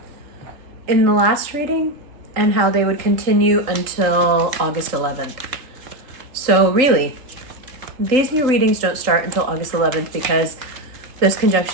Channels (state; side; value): late; left; 3.8 ms